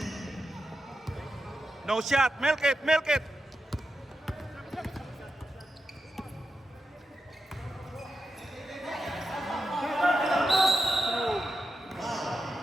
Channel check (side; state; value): both; normal; correlation 0.88